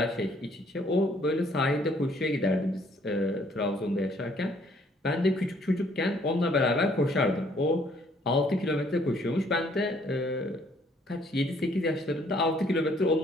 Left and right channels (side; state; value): both; normal; correlation 0.63